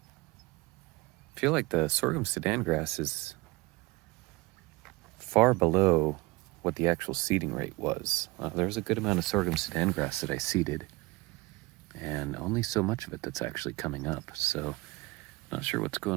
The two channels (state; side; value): quieter; left; 22.6 dB